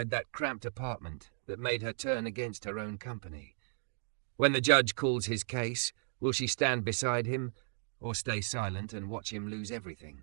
that cramped apartment that made her turn against her own company? When the judge calls his case, will she stand beside him or stay silent and watch him lose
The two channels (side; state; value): left; silent; digital silence